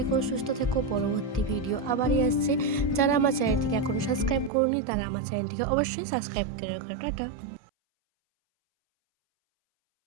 সুস্থ থেকো। পরবর্তী ভিডিও আবারই আসছে। যারা আমার চ্যানেলটিকে এখনো সাবস্ক্রাইব করোনি তারা আমার চ্যানেলটিকে অবশ্যই সাবস্ক্রাইব করে রাখো। টাটা।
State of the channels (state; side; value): drops out; left; at 4.5 s